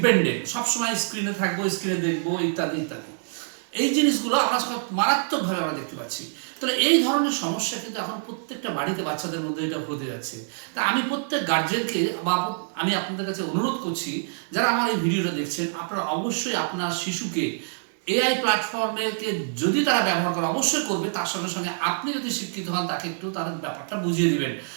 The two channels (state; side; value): silent; left; digital silence